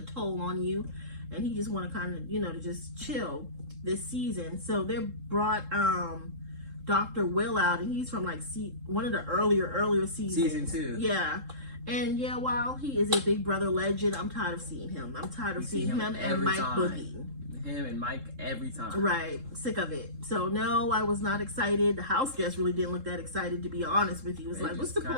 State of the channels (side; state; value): left; late; 3.7 ms